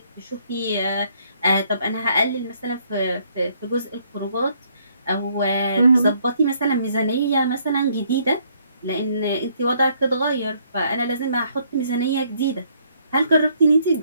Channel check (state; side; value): inverted; both; correlation -0.67